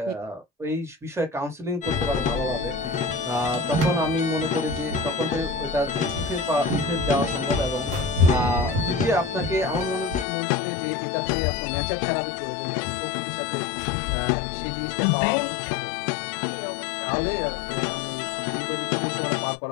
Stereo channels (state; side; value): drops out; right; at 10.2 s